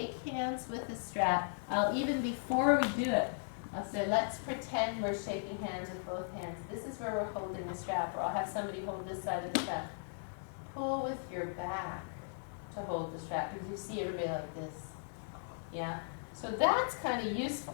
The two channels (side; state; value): right; silent; digital silence